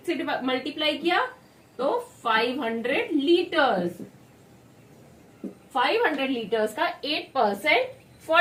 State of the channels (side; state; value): both; identical; correlation 1.00